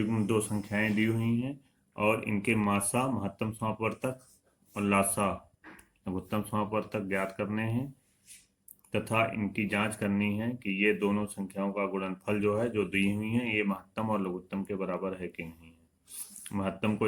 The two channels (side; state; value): both; identical; correlation 1.00